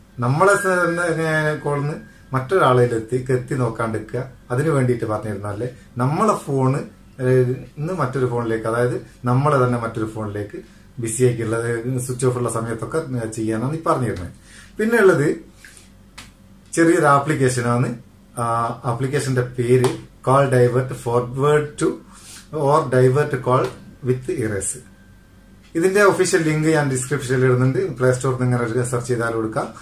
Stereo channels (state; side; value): identical; both; correlation 1.00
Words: നമ്മളെ കോളിന്ന് മറ്റൊരാളിലെത്തി നോക്കാണ്ടിരിക്കുക. അതിനു വേണ്ടിയിട്ട് പറഞ്ഞിരുന്നാലേ നമ്മളെ ഫോണ് മറ്റൊരു ഫോണിലേക്ക്, അതായത് നമ്മളെ തന്നെ മറ്റൊരു ഫോണിലേക്ക് ബിസി ആക്കിയുള്ളത് സ്വിച്ച് ഓഫ് ഉള്ള സമയത്തൊക്കെ ചെയ്യാനാണ് ഈ പറഞ്ഞിരുന്നത്. പിന്നെ ഉള്ളത് ചെറിയൊരു ആപ്ലിക്കേഷനാണ്. ആപ്ലിക്കേഷന്റെ പേര് call divert forward two or divert call with erase. ഇതിന്റെ ഒഫീഷ്യൽ ലിങ്ക് ഞാൻ ഡിസ്ക്രിപ്ഷനിൽ ഇടുന്നുണ്ട്. പ്ലേ സ്റ്റോറിൽ നിന്ന് ഇങ്ങനെ സെർച്ച് ചെയ്താൽ കൊടുക്കാം.